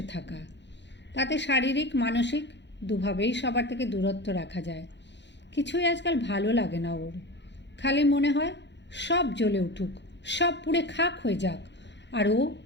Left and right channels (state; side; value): late; right; 0.52 ms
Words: থাকা। তাতে শারীরিক মানসিক দুভাবেই সবার থেকে দূরত্ব রাখা যায়। কিছুই আজকাল ভালো লাগে না ওর। খালি মনে হয় সব জ্বলে উঠুক, সব পুড়ে খাক হয়ে যাক, আর ও